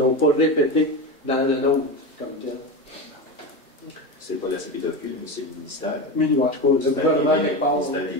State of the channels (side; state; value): both; normal; correlation 0.21